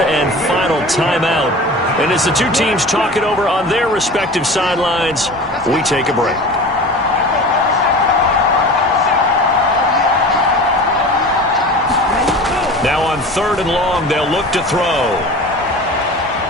and final timeout. And as the two teams talk it over on their respective sidelines, we take a break. Now on 3rd and long, they'll look to throw.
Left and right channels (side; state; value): both; normal; correlation 0.36